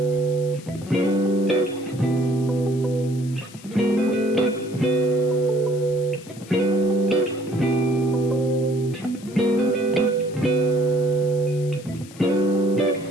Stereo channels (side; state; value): left; noise; hiss, 20 dB below the sound